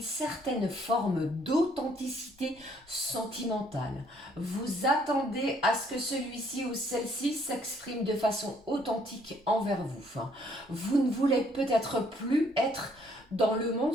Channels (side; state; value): both; normal; correlation 0.65